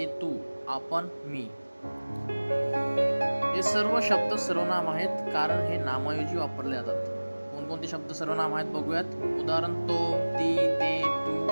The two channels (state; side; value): inverted; both; correlation -1.00